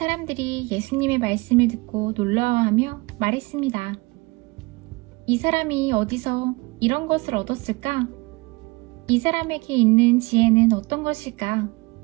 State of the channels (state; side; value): quieter; left; 25.1 dB